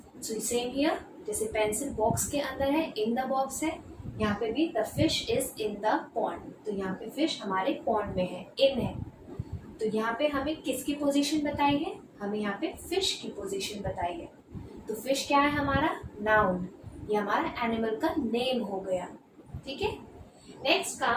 सो सेम हियर, जैसे पेंसिल बॉक्स के अंदर है, इन द बॉक्स है, यहाँ पे भी the fish is in the pond. तो यहाँ पे फिश हमारे पॉन्ड में है, इन है. तो यहाँ पे हमें किसकी पोजीशन बताई है? हमें यहाँ पे फिश की पोजीशन बताई है. तो फिश क्या है? हमारा नाउन. ये हमारा एनिमल का नेम हो गया. ठीक है. Next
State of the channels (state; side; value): identical; both; correlation 1.00